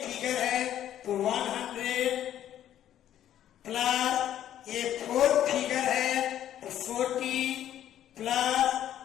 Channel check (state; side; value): quieter; right; 11.3 dB